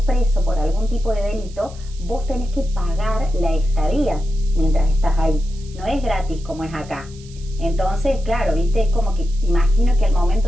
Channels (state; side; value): noise; right; hiss, 23 dB below the sound